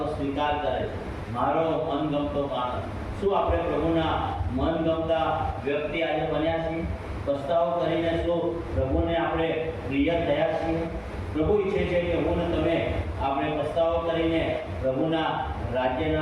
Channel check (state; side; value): identical; both; correlation 1.00